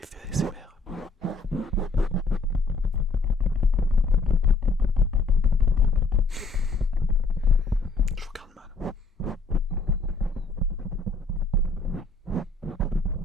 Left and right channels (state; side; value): quieter; right; 3.6 dB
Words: ASMR. Je vous regarde mal.